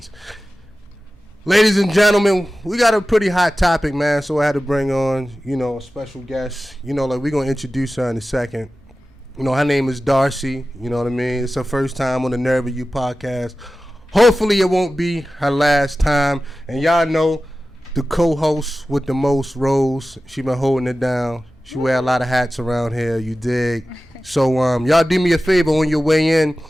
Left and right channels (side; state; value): both; normal; correlation 0.95